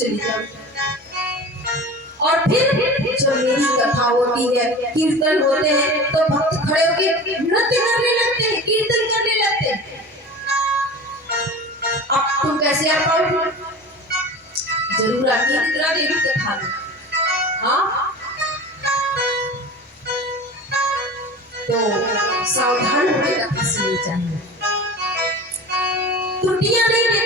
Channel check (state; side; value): normal; both; correlation 0.35